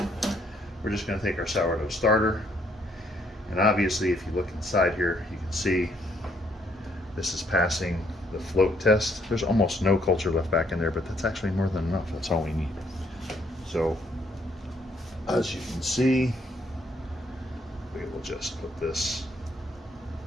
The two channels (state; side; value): normal; both; correlation 0.69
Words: it. We're just going to take our sourdough starter, and obviously if you look inside here you can see this is passing the float test. There's almost no culture left back in there, but that's actually more than enough. That's all we need. So as you can see, we will just put this